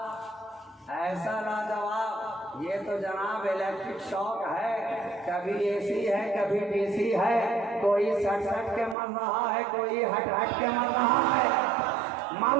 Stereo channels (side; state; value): left; drops out; at 9.0 s